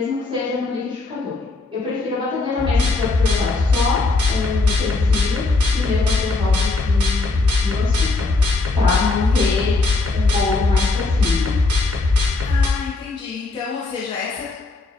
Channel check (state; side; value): quieter; right; 3.5 dB